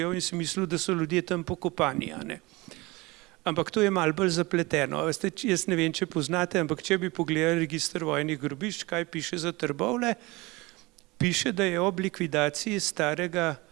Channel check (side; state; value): left; quieter; 23.0 dB